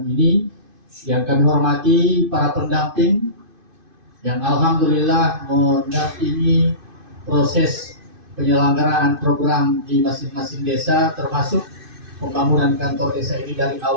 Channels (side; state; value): left; late; 2.5 ms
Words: ini, yang kami hormati para pendamping yang alhamdulillah mendampingi proses penyelenggaraan program di masing-masing desa, termasuk pembangunan kantor desa ini dari